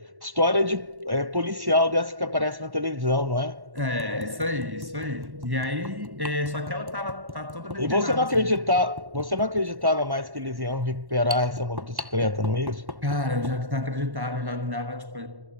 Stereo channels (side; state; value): left; late; 1.1 ms